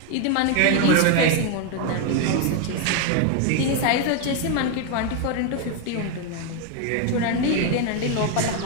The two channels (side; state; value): both; different; correlation 0.01